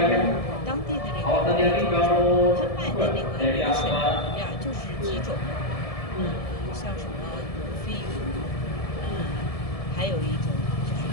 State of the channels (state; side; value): late; right; 1.7 ms